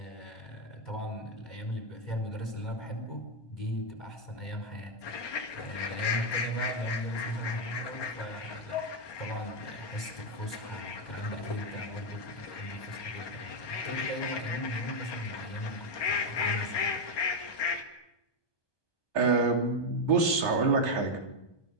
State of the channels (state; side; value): late; right; 1.2 ms